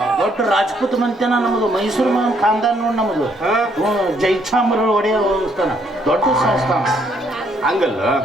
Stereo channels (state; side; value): normal; both; correlation 0.69